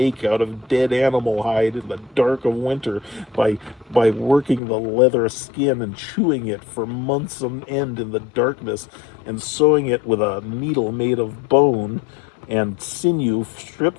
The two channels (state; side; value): drops out; right; at 4.6 s